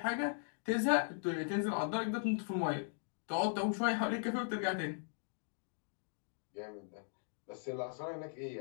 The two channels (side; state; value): right; silent; digital silence